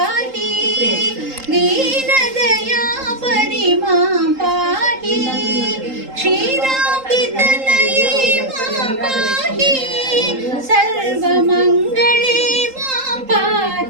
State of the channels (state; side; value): late; left; 3.8 ms